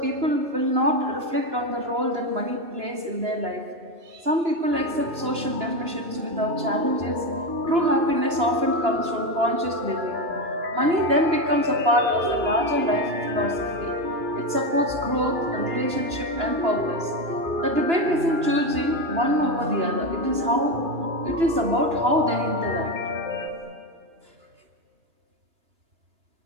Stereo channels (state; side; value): late; left; 2.9 ms